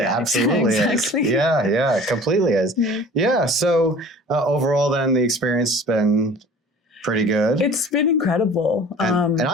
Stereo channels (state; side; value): normal; both; correlation 0.44